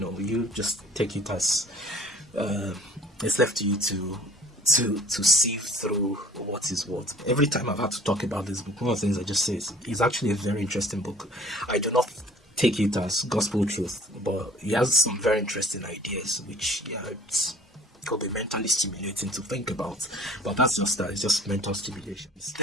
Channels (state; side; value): normal; both; correlation 0.52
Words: just take it as it's left to you to sieve through what is what. Every time I've had to talk about this book, one of the things I just say is it's actually a very interesting book. I do not take it as gospel truth, but he has some very interesting ideas, which could be mentally stimulating to think about. But that's just that. It's just mental stimulation. It's